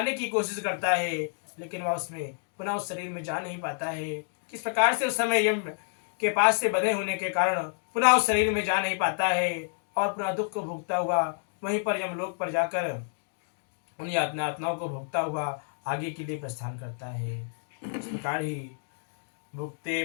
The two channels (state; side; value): silent; right; digital silence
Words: की कोशिश करता है, लेकिन वह उसमें पुनः उस शरीर में जा नहीं पाता है। किस प्रकार से उस समय यम के पास से बंधे होने के कारण पुनः उस शरीर में जा नहीं पाता है और पुनः दुख को भोगता हुआ वहीं पर यमलोक पर जाकर उन यातनाओं को भोगता हुआ आगे के लिए प्रस्थान करता है। इस प्रकार ही भुक्ते